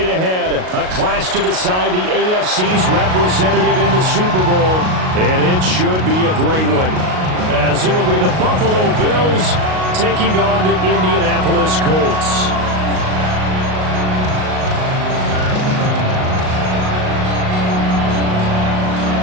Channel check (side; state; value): left; late; 38 ms